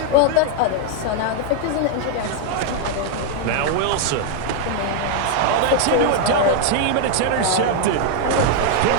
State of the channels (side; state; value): both; different; correlation 0.00